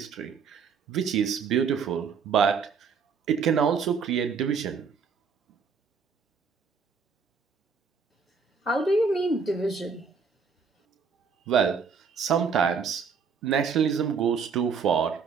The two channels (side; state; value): left; quieter; 5.7 dB